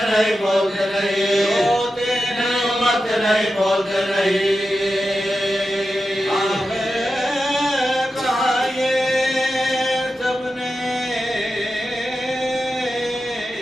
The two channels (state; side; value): normal; both; correlation 0.91